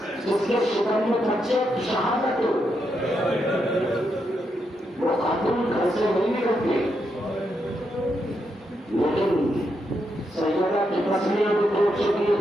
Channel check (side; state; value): both; normal; correlation 0.82